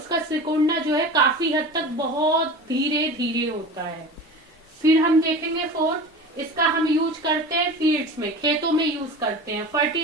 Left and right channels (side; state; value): both; normal; correlation 0.33